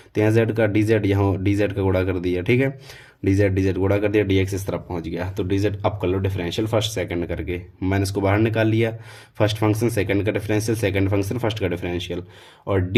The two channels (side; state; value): both; identical; correlation 1.00